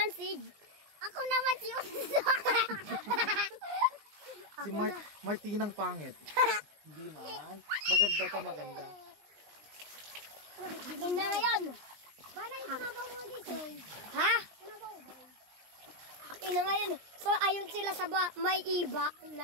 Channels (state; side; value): late; left; 20 ms